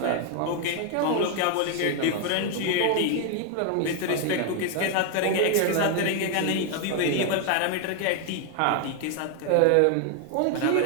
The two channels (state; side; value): different; both; correlation 0.00